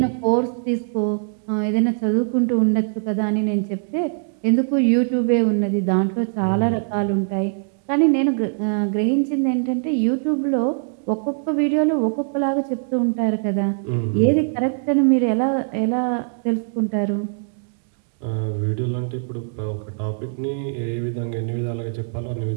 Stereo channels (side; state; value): left; silent; digital silence